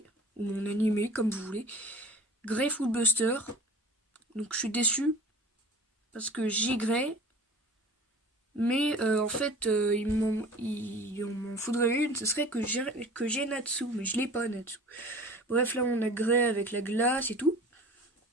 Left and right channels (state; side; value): normal; both; correlation 0.41